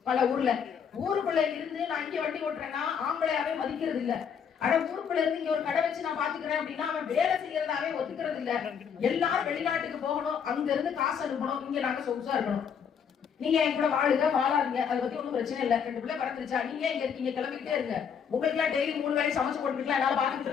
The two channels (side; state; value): right; quieter; 7.3 dB